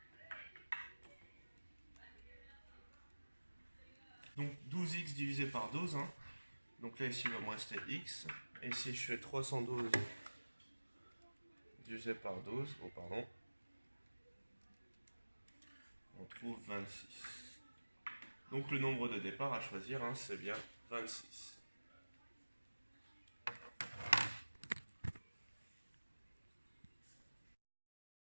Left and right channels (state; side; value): inverted; both; correlation -1.00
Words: Donc 12x divisé par 12. Hein. Donc là, ici, il va me rester x. Et si je fais 312 divisé par 12, oh pardon, on trouve 26. Donc le nombre de départ à choisir, hein, c'est bien 26.